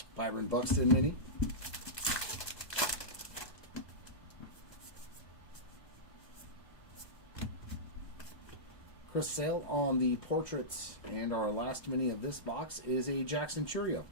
Byron Buxton mini. Chris Sale on the portraits, and our last mini of this box is a Jackson Churio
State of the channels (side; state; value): right; late; 1.2 ms